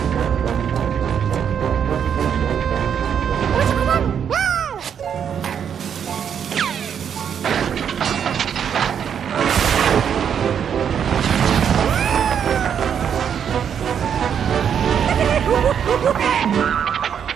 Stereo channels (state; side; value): quieter; left; 8.1 dB